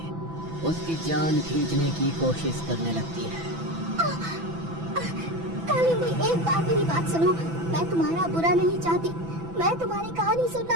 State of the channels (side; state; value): left; late; 6.0 ms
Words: उसकी जान खींचने की कोशिश करने लगती है। कालिंदी, एक बार मेरी बात सुनो। मैं तुम्हारा बुरा नहीं चाहती, मैं तुम्हारी कहानी